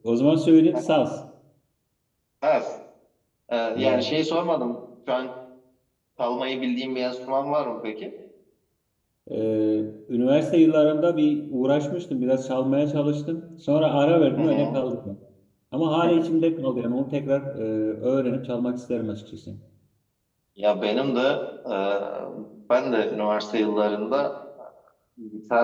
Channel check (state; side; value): identical; both; correlation 1.00